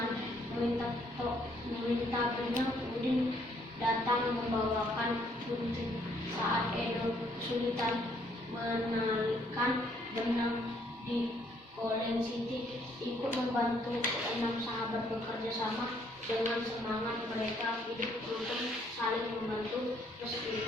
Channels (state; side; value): normal; both; correlation 0.67